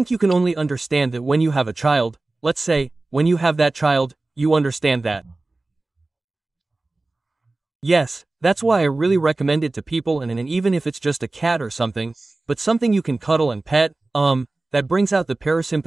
you can only understand that when you have a child. Let's say, when you have that child, you understand that. Yes, that's why I really recommend it to people, and even if it's just a cat or something, but something you can cuddle and pet, that brings out the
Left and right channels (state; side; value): quieter; left; 3.1 dB